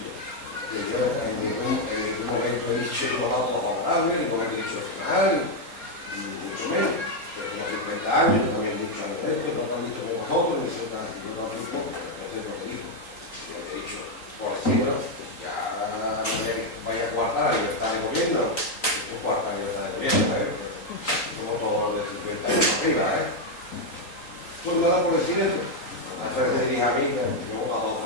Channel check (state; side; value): late; right; 3.9 ms